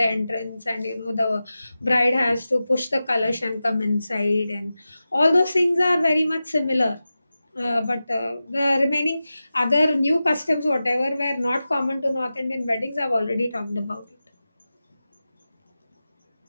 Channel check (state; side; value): inverted; both; correlation -0.94